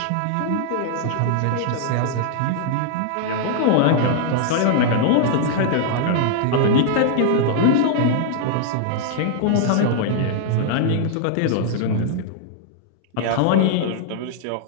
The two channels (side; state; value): both; different; correlation 0.00